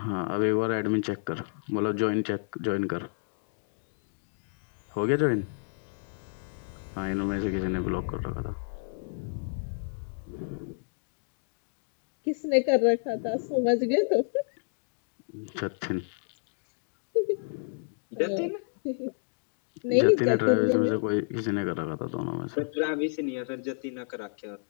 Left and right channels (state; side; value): silent; right; digital silence